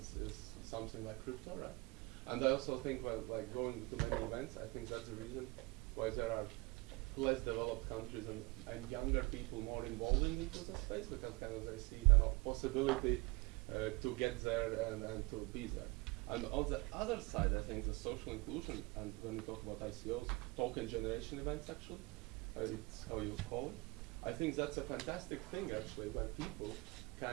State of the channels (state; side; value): quieter; left; 24.9 dB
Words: something like crypto, right? And I also think, well, like going to many events, I think that's the reason why there are less developed countries and younger people more involved into the space, because kind of they see kind of possibility to get there and to be there. And on the other side, I think the social inclusion, and when we talk about ICOs, token generation events actually, it's how you call it. I think that's a fantastic thing actually, where people